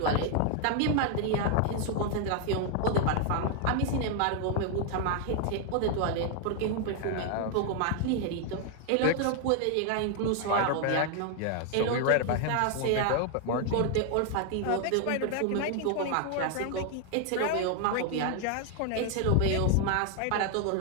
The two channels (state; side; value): different; both; correlation 0.00